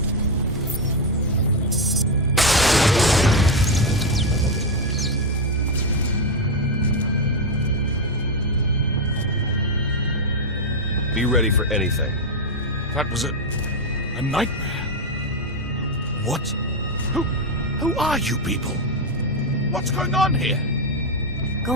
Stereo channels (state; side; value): normal; both; correlation 0.05